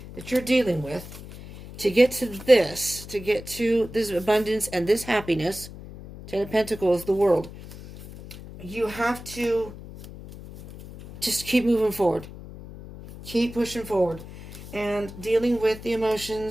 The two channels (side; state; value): left; noise; hum, 14 dB below the sound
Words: that you're dealing with, to get to this, to get to this abundance and this happiness, Ten of Pentacles, the world, you have to just keep moving forward. Keep pushing forward. And dealing with the